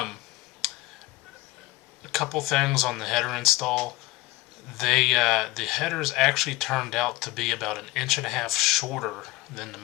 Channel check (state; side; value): quieter; right; 19.3 dB